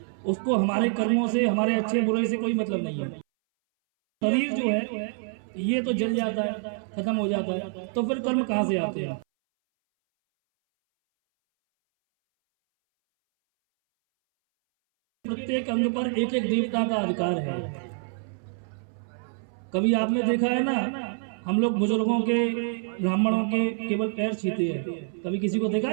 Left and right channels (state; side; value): silent; left; 60 dB below the other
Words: उसको हमारे कर्मों से, हमारे अच्छे बुरे से कोई मतलब नहीं है। शरीर जो है ये तो जल जाता है, खत्म हो जाता है, तो फिर कर्म कहाँ से आते हैं? प्रत्येक अंग पर एक एक देवता का अधिकार है। कभी आपने देखा है ना, हम लोग बुजुर्गों के, ब्राह्मणों के केवल पैर छीते हैं, कभी किसी को देखा